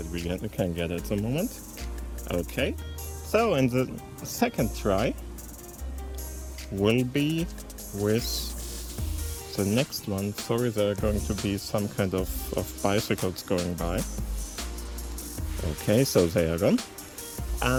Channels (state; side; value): identical; both; correlation 1.00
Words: we can get at the moment. Okay, so in the second try will be with the next one. Sorry, there are going to be some kind of bicycles going by. Okay, so they are gone.